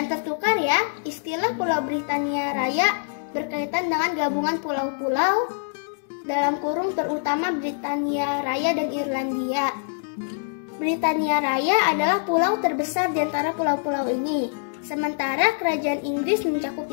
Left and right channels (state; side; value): silent; right; digital silence